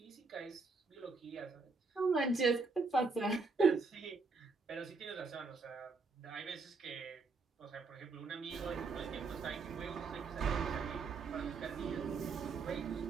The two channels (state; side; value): quieter; left; 4.2 dB